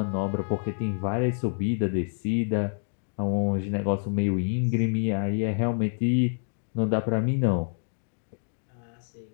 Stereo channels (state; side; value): silent; right; 60 dB below the other